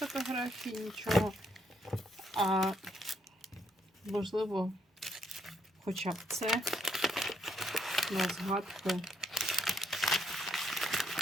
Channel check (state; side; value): normal; both; correlation 0.74